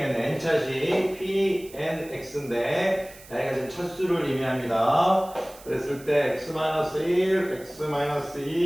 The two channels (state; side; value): noise; right; hiss, 20 dB below the sound